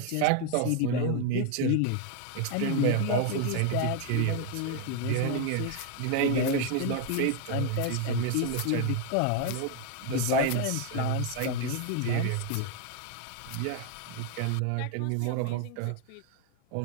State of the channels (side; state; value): both; different; correlation 0.01